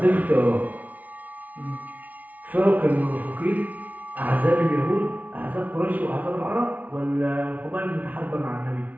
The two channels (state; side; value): late; left; 0.073 ms